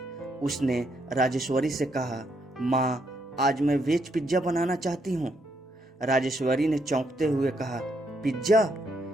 उसने राजेश्वरी से कहा, माँ, आज मैं वेज पिज्जा बनाना चाहती हूँ। राजेश्वरी ने चौंकते हुए कहा, पिज्जा?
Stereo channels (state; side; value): normal; both; correlation 0.76